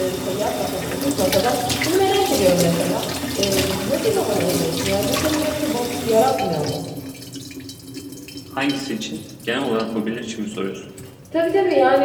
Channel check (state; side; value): identical; both; correlation 1.00